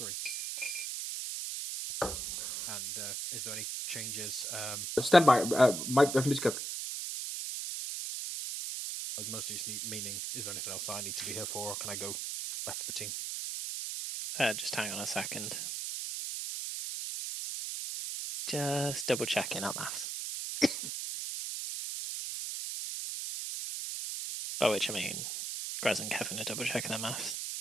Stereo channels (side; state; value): right; noise; hiss, 4 dB below the sound